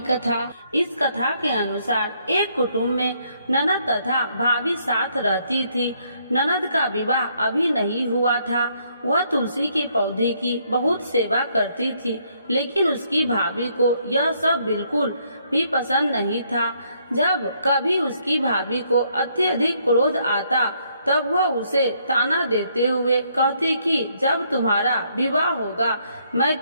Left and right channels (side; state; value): both; inverted; correlation -0.70